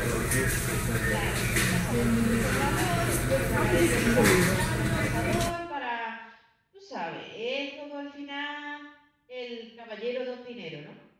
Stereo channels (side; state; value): both; identical; correlation 1.00